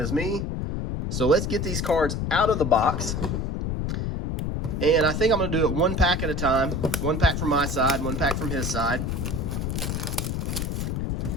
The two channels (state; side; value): noise; left; rumble, 2 dB below the sound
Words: me. So let's get these cards out of the box. And I think I'm going to do it 1 pack at a time. 1 pack from my side, 1 pack from his side.